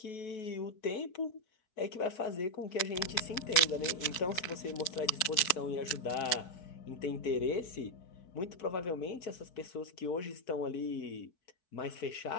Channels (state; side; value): late; right; 4.6 ms